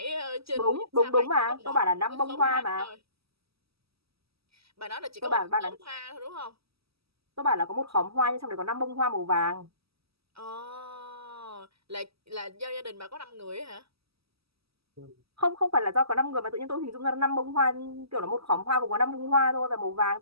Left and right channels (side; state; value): left; late; 0.76 ms